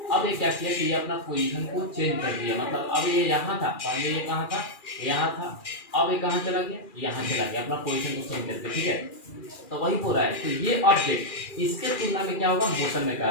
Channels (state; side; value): late; right; 2.4 ms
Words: अब ये क्या किया कि ये अपना पोजीशन को चेंज कर दिया, मतलब अब ये यहाँ था, पहले ये कहाँ था, यहाँ था, अब ये कहाँ चला गया, यहाँ चला गया, अपना पोजीशन को चेंज करके, ठीक है। तो वही बोल रहा है, तो ये ऑब्जेक्ट इसके तुलना में क्या होगा, मोशन में